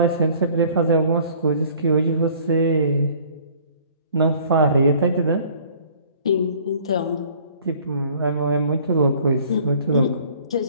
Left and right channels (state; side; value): inverted; both; correlation -0.54